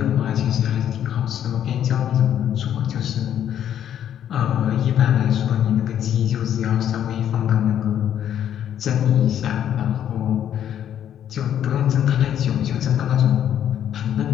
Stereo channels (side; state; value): right; quieter; 10.1 dB